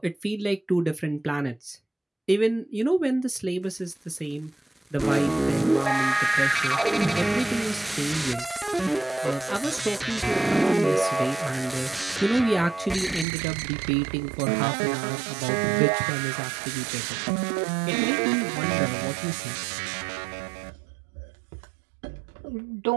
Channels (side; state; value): left; drops out; at 13.2 s